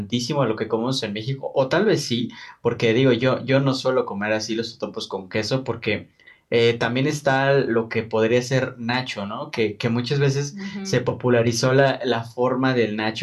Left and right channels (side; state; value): both; identical; correlation 1.00